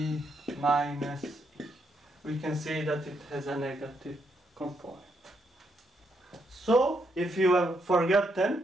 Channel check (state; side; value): normal; both; correlation 0.77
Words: minus e. We can see that it has a negative component. So if you have